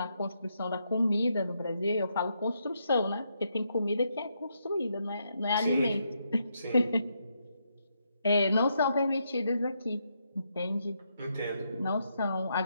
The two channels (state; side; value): inverted; both; correlation -0.79